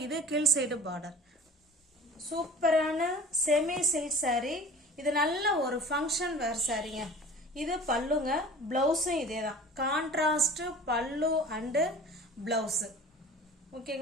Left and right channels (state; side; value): normal; both; correlation 0.42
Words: இது கீழ் சைடு பார்டர். சூப்பரான செமி சில்க் சாரீ. இது நல்ல ஒரு ஃபங்க்ஷன் வேர் சாரீங்க. இது பல்லுங்க, பிளவுஸும் இதே தான். கான்ட்ராஸ்ட் பல்லு அண்டு பிளவுஸு.